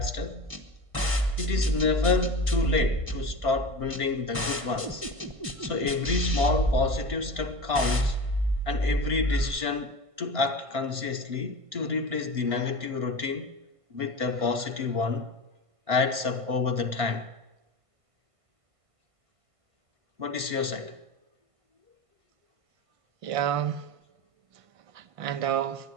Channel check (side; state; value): left; late; 1.5 ms